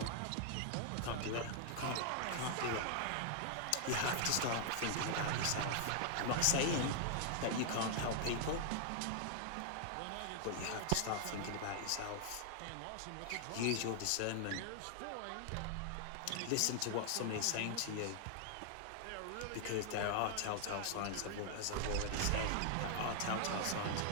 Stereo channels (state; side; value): different; both; correlation 0.00